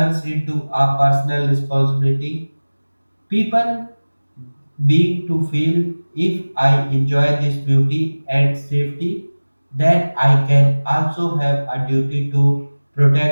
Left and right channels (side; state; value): both; inverted; correlation -1.00